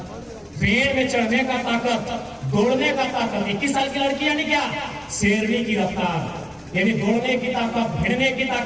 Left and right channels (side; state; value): both; identical; correlation 1.00